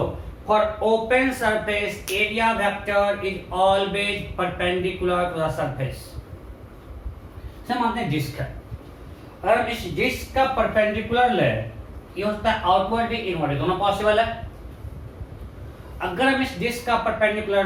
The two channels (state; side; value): identical; both; correlation 1.00